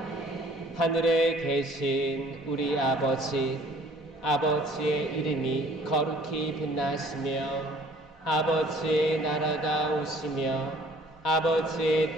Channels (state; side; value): normal; both; correlation 0.55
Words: 하늘에 계신 우리 아버지의 이름이 거룩히 빛나시며 아버지의 나라가 오시며